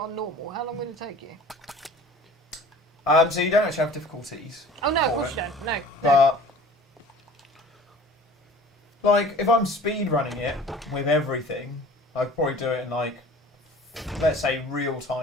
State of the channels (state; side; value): normal; both; correlation 0.45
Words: on normal, how long would it take you? So you don't actually have difficulties. Oh no, of course you don't. No. But like, if I'm speed running it with everything, I'd probably do it in like, let's say, real